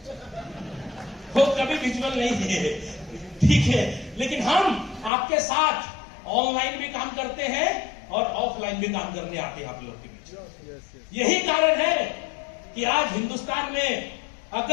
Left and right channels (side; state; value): right; drops out; at 5.1 s